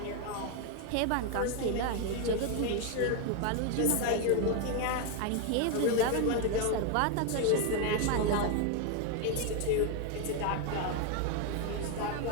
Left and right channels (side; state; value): both; different; correlation 0.01